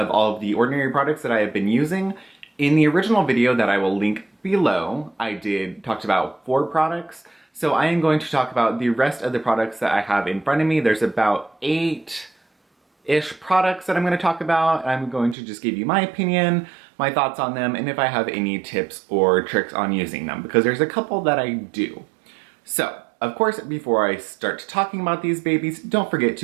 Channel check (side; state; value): left; drops out; at 15.4 s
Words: all of the ordinary products that I have been using. In the original video that I will link below, I talked about 4 products. So I am going to talk about the rest of the products that I have in front of me. There's about 8-ish products that I'm going to talk about. I'm going to just give you my opinion, my thoughts on them, and if I have any tips or tricks on using them, because there's a couple that I do. So, of course, before I start talking about these babies, don't forget